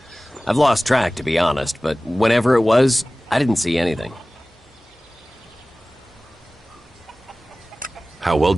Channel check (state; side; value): normal; both; correlation 0.98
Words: I've lost track, to be honest, but whenever it was, I didn't see anything. How well